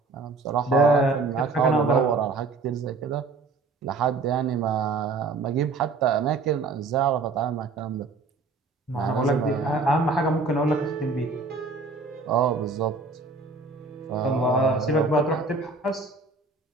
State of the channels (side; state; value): left; quieter; 3.8 dB